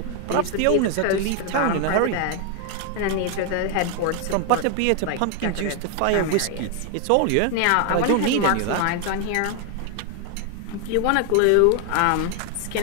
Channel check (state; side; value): different; both; correlation 0.01